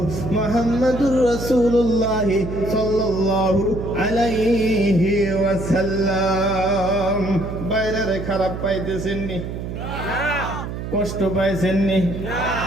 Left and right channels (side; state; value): right; noise; hum, 7 dB below the sound